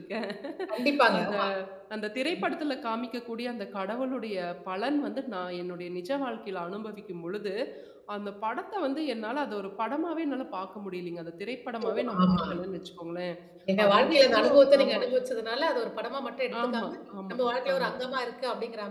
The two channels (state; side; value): identical; both; correlation 1.00